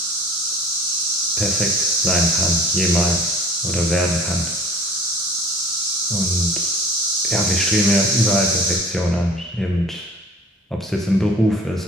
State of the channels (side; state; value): both; normal; correlation 0.47